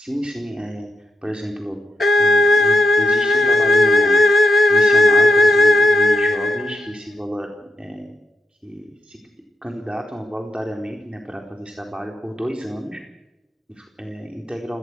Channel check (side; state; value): both; normal; correlation 0.84